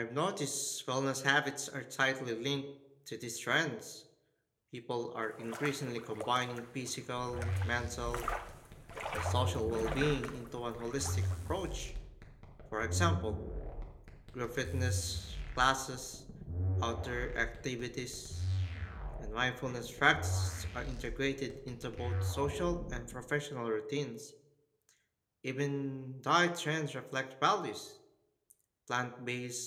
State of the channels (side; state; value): both; identical; correlation 1.00